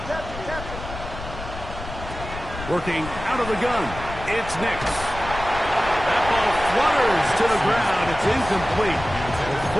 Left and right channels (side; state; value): left; noise; rumble, 10 dB below the sound